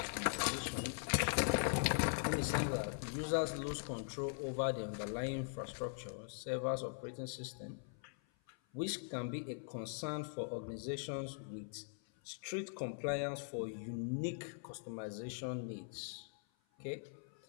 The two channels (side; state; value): right; silent; 50 dB below the other